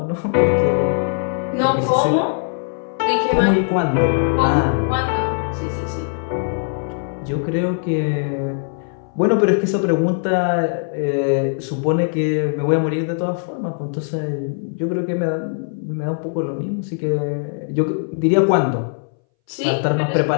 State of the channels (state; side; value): silent; right; 63 dB below the other